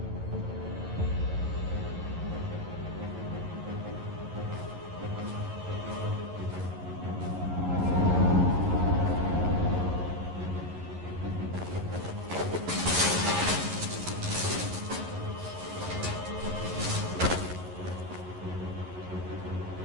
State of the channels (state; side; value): late; left; 11 ms